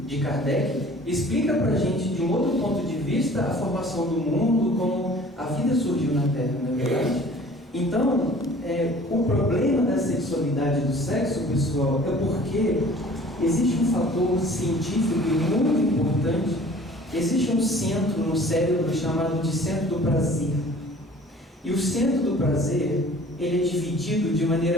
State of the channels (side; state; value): both; normal; correlation 0.49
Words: de Kardec, explica para a gente de um outro ponto de vista a formação do mundo, como a vida surgiu na Terra, não é verdade? Então, o problema da sexualidade e do sexo, pessoal, é porque existe um fator científico muito importante. Existe um centro no cérebro chamado de centro do prazer. E o centro do prazer, ele é dividido de